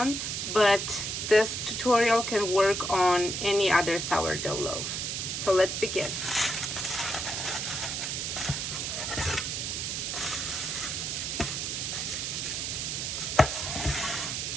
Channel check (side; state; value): right; noise; hiss, 2 dB below the sound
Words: but this tutorial can work on any other sourdough loaf. So let's begin.